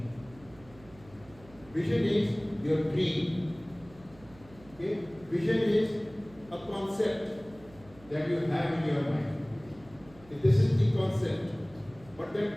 Vision is your dream. Okay? Vision is a concept that you have in your mind. This is the concept. But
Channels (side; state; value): right; noise; hum, 23 dB below the sound